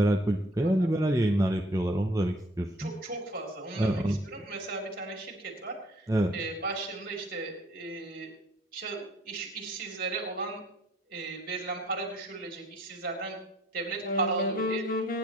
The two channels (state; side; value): normal; both; correlation 0.59